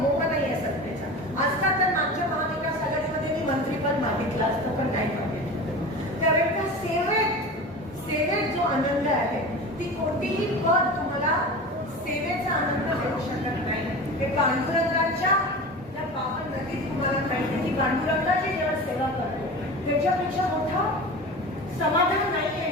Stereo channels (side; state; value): both; normal; correlation 0.32